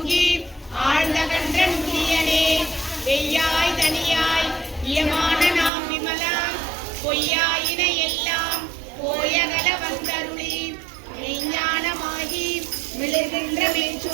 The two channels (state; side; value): drops out; left; at 5.7 s